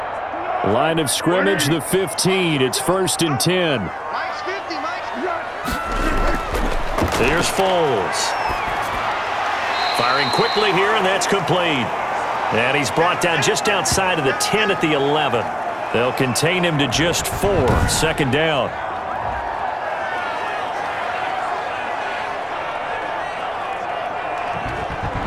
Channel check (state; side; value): identical; both; correlation 1.00